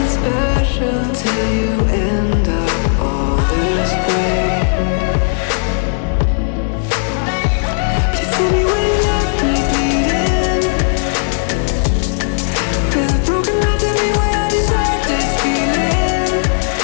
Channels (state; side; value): silent; right; digital silence